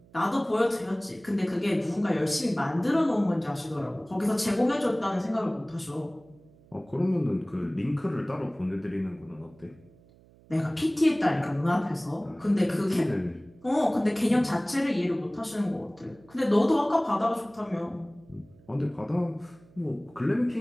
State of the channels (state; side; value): noise; right; hum, 27 dB below the sound